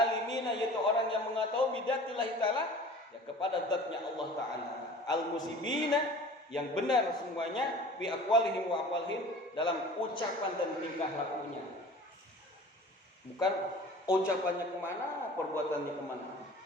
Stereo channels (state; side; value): normal; both; correlation 0.43